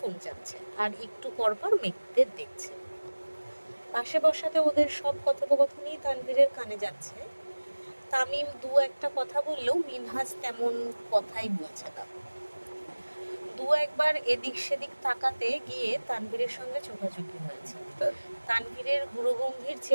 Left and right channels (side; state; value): both; inverted; correlation -1.00